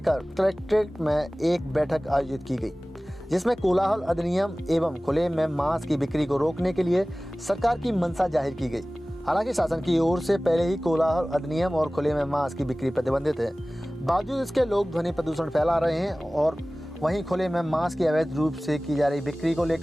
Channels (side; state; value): both; normal; correlation 0.98